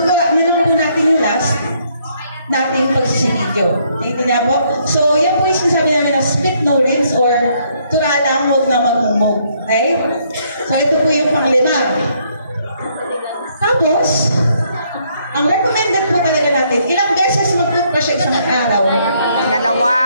na lang po natin yung last nating pagsisilidyo. Tingnan po. So, yan po yung sinasabi namin na split no rinse or tura lang, huwag na magmumog. Okay? So, ito po yung panglima. Tapos, ang recommended po talaga natin, ilang beses mag-toothbrush sa isang araw? 2.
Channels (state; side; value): inverted; both; correlation -0.69